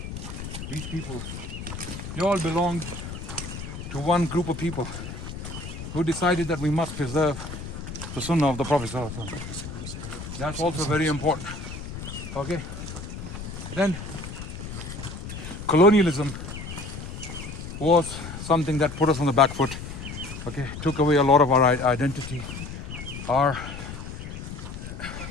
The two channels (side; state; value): left; noise; rumble, 9 dB below the sound